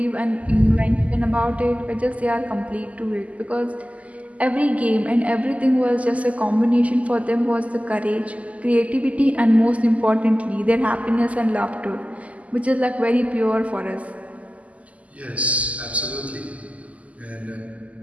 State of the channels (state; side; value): late; left; 0.070 ms